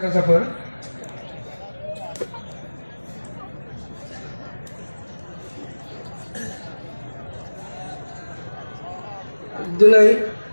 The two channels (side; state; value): both; inverted; correlation -1.00